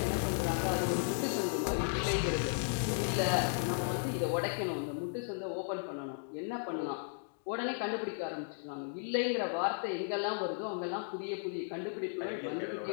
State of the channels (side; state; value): right; silent; digital silence